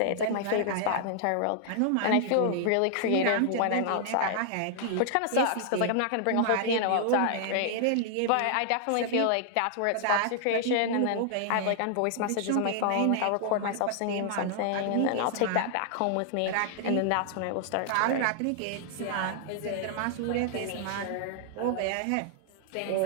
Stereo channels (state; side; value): different; both; correlation -0.01